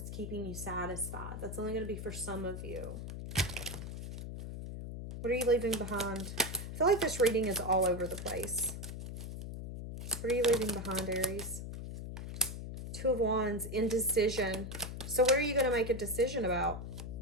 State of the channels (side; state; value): left; noise; hum, 7 dB below the sound